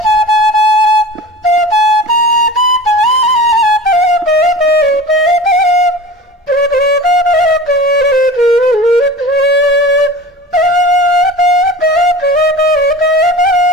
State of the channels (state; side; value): normal; both; correlation 0.36